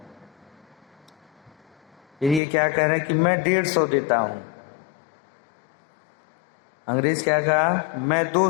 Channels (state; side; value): drops out; right; at 2.4 s